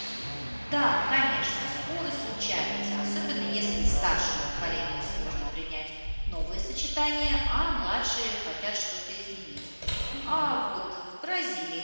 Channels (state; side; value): inverted; both; correlation -1.00